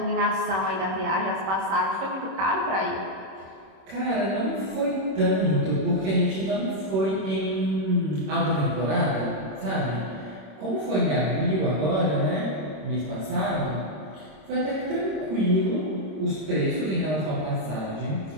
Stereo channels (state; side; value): late; left; 26 ms